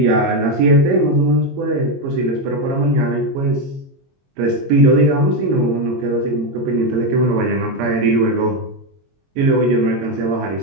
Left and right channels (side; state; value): left; late; 22 ms